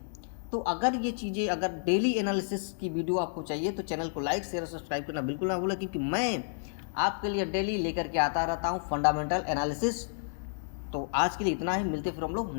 तो अगर ये चीज़ें, अगर डेली एनालिसिस की वीडियो आपको चाहिए तो चैनल को लाइक शेयर और सब्सक्राइब करना बिल्कुल ना भूलें, क्योंकि मैं आपके लिए डेली लेकर के आता रहता हूँ फंडामेंटल एनालिसिस। तो आज के लिए इतना ही, मिलते फिर हम लोग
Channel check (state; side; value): silent; right; 57 dB below the other